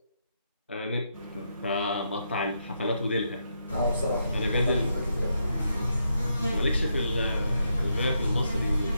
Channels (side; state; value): both; inverted; correlation -0.80